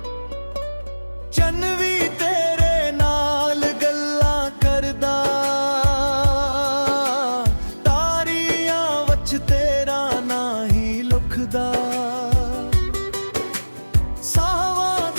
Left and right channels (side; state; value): both; inverted; correlation -1.00